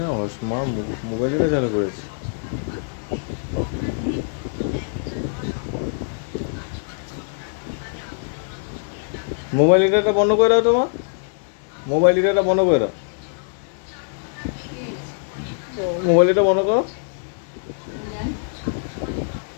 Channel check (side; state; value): right; silent; digital silence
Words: না মা মোবাইলটা চালু করেছে। মোবাইল এটা বন্ধ করে দাও তোমার, মোবাইল এটা বন্ধ করে দাও, মোবাইল এটা বন্ধ করো।